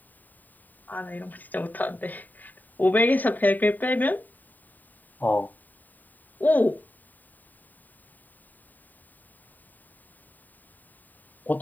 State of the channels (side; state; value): right; late; 0.086 ms